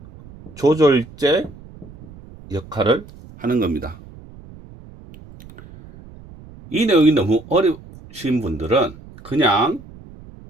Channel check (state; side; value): noise; right; rumble, 20 dB below the sound